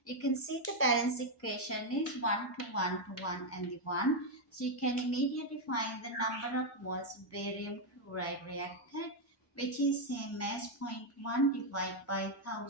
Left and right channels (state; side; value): normal; both; correlation 0.02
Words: You can see the balance equation is 1 to 1 to 1 and the 1. So you can immediately find the number of moles of barium chloride reacted, which is same as 0.1 divided by